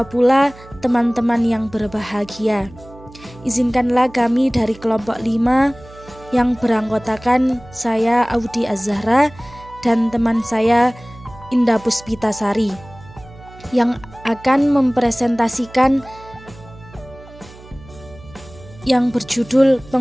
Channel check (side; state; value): right; noise; hum, 20 dB below the sound